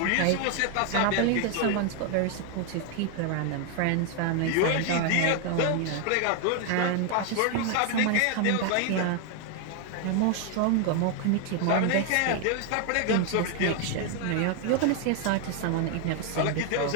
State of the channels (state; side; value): different; both; correlation 0.00